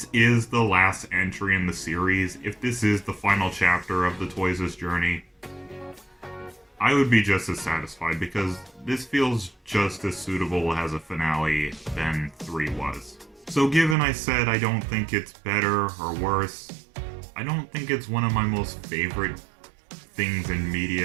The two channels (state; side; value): drops out; left; at 14.0 s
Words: is the last entry in the series, if this is the final chapter of the Toys' journey, I would be just as satisfied, because this feels just as suitable as a finale than 3 was. So given I said I don't think it's better or worse, I don't think it's one of my most favorite things in